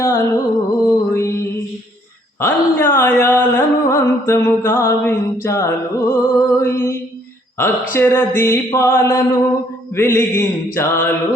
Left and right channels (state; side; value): normal; both; correlation 0.65